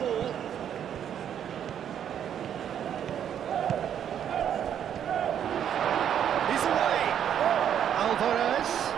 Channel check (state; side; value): quieter; left; 9.3 dB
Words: He's away. Alvarez.